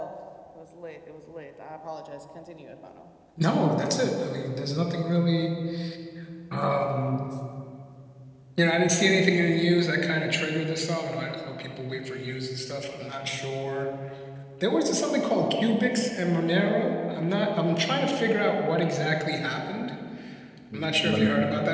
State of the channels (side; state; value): both; identical; correlation 1.00